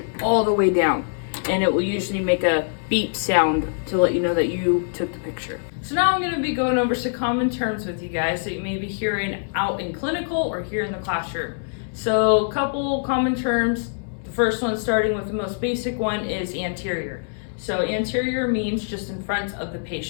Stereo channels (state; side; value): silent; right; digital silence